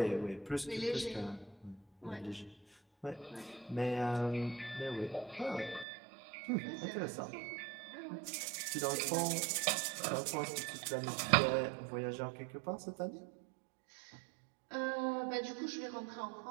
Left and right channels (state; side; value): drops out; left; at 5.9 s